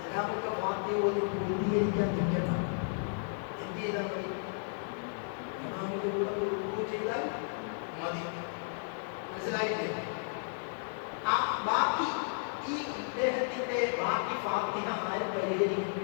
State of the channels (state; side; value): silent; right; digital silence